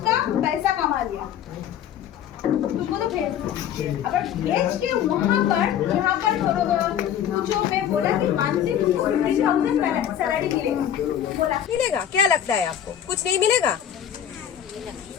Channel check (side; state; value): right; quieter; 9.9 dB